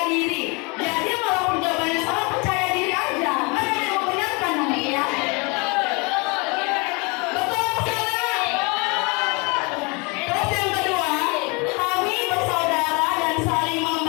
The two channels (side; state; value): right; quieter; 29.6 dB